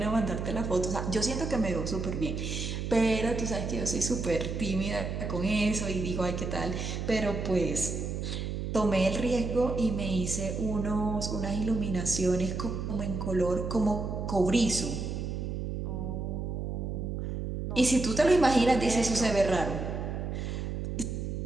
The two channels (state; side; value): noise; right; hum, 3 dB below the sound